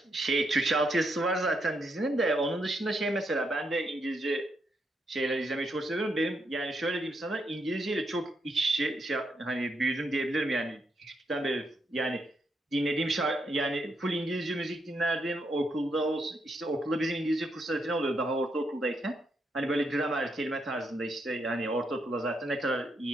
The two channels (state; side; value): normal; both; correlation 0.79